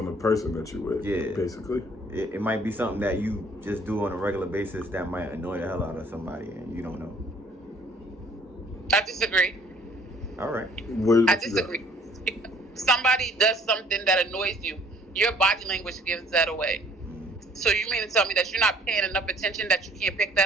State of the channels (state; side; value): normal; both; correlation 0.58